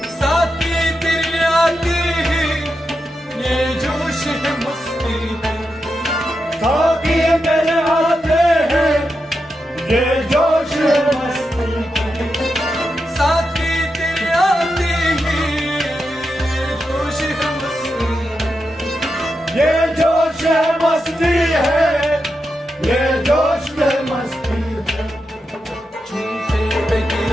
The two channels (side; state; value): both; normal; correlation 0.87